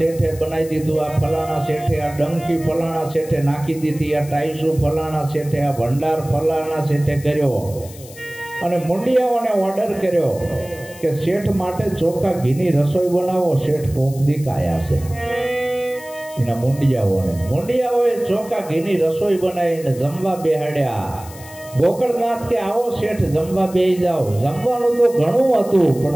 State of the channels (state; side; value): noise; left; hiss, 19 dB below the sound